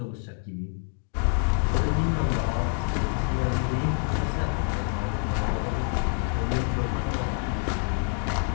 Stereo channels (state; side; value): quieter; right; 37.6 dB